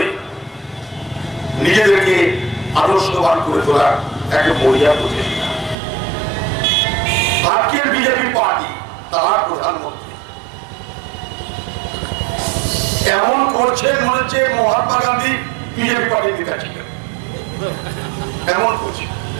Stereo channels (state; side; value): drops out; left; at 5.8 s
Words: নিজেদেরকে আদর্শবান করে তোলার একটা মরিয়া প্রচেষ্টা। আজকের বিজেপি পার্টি, তার প্রধানমন্ত্রী এমন করছেন মনে হচ্ছে মহাত্মা গান্ধী বিজেপি পার্টির নেতা ছিলেন, এমন করছে।